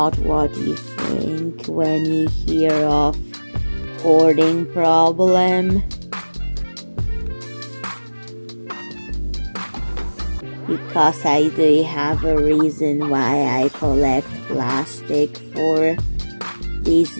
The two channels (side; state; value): both; inverted; correlation -1.00